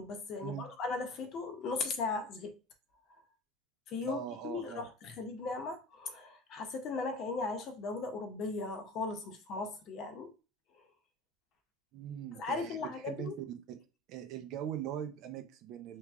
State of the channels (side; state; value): both; normal; correlation 0.37